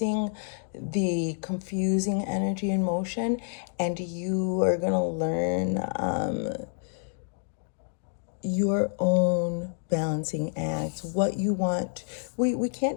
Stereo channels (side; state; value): right; silent; digital silence